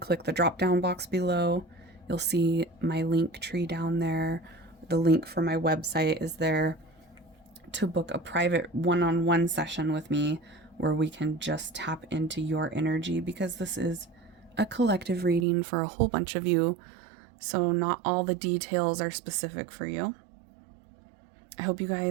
the drop-down box below. You'll see my LINKTREE down there. The link for my website is there to book a private one-on-one session with me, where we can just tap into your energy, because this is a collective reading for a whole bunch of you, so not all the details are specific for you. I hope you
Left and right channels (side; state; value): left; drops out; at 15.5 s